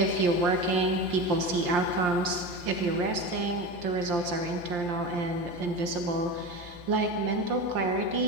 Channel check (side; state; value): left; late; 5.7 ms